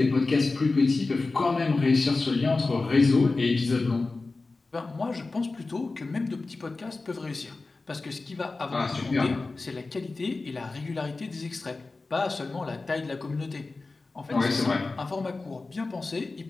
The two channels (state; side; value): quieter; right; 3.6 dB